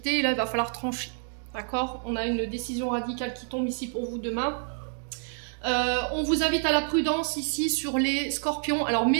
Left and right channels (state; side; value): silent; left; 59 dB below the other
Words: et là, il va falloir trancher. D'accord? On a une décision radicale qui tombe ici pour vous demain. On vous invite à la prudence ici sur les scorpions. Alors,